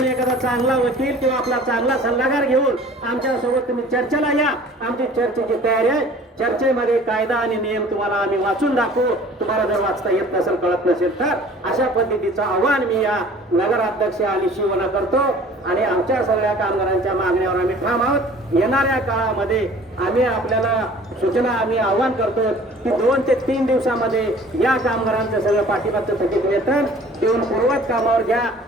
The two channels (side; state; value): both; normal; correlation 0.48